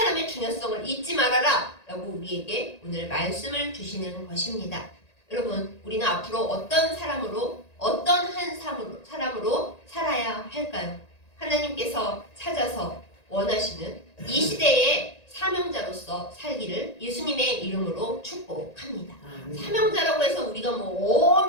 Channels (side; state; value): right; late; 1.9 ms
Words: 중요성을 잊지 말아라 라고 우리에게 오늘 말씀을 주시는 것입니다. 여러분, 우리는 앞으로 어떤 사람으로, 어떤 한 사람으로 살아야 할까요? 하나님께서 찾아서 원하시는 이 시대의 사명자로서 살기를 예수님의 이름으로 축복합니다. 사명자라고 해서 우리가 뭐